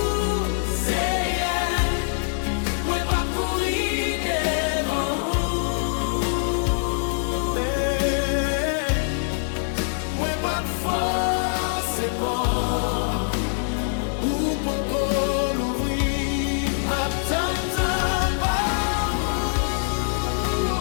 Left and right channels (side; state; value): right; silent; digital silence